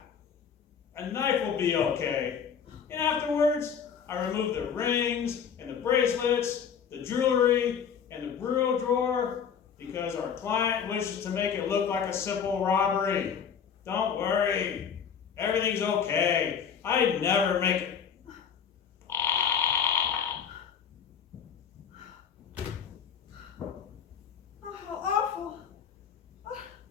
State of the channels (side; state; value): right; quieter; 7.3 dB